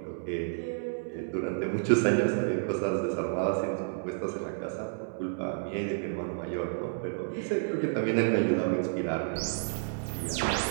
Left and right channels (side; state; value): left; silent; digital silence